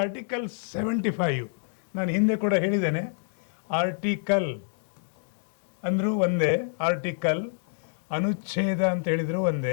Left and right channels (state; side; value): silent; right; digital silence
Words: ಆರ್ಟಿಕಲ್ 75 ನಾನು ಹಿಂದೆ ಕೂಡ ಹೇಳಿದ್ದೇನೆ. ಆರ್ಟಿಕಲ್ ಅಂದರೂ ಒಂದೇ, ಆರ್ಟಿಕಲ್ ಅನುಚ್ಛೇದ ಅಂತ ಹೇಳಿದ್ರು